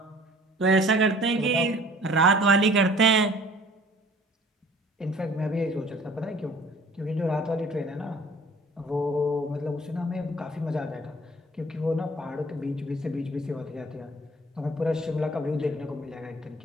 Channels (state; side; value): normal; both; correlation 0.51